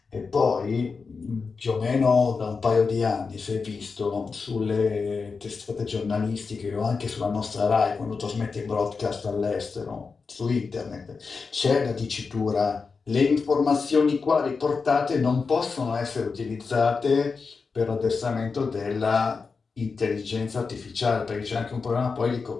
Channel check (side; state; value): right; quieter; 4.8 dB